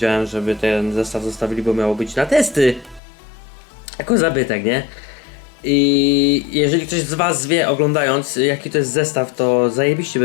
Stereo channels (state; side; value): drops out; right; at 3.0 s